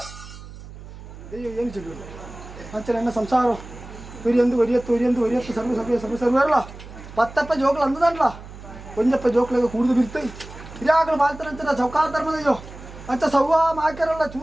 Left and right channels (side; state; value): right; noise; hum, 15 dB below the sound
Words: ದೈವ ಏನು ಚೆಲ್ಲುಂಡ ಅಂಚ ನನ್ನ ಸಂಸಾರ ಒರಿಯತ್ತು ಸರ್ವರಲ್ಲ ಪತ್ತಪ್ಪ ಜೋಕ್ಲು ಅಂದದಲ್ಲ ಒಂಜಪ್ಪ ಜೋಕ್ಲಾಗ ಕುಡಿದು ಬಿರ್ತಾಯಿ ಹಿರಿಯಾಗಲು ಬಾಳ್ತಾರಂತ ಚೌಕಾಲ ಧರ್ಮದಯ್ಯೋ ಅಂಚ ಸವ್ವ ಮಾಕ್ಯಾರಲ್ಲ